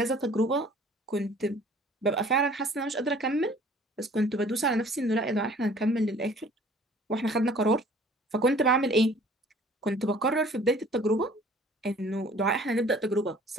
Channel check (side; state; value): both; normal; correlation 0.52